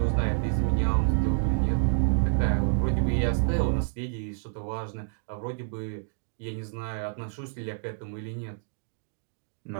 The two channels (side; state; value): left; silent; digital silence